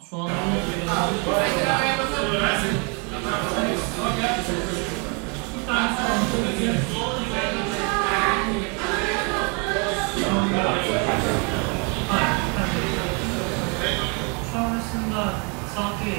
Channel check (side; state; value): left; quieter; 34.4 dB